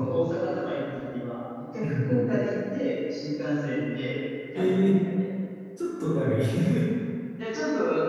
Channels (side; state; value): both; identical; correlation 1.00